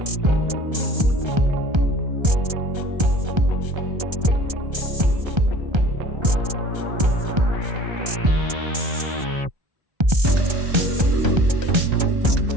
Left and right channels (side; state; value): left; late; 1.3 ms